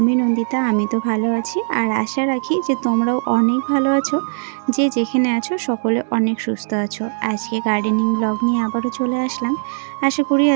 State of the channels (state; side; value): silent; left; digital silence